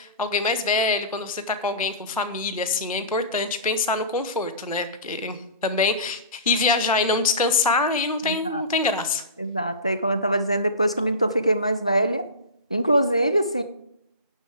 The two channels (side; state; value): both; inverted; correlation -0.31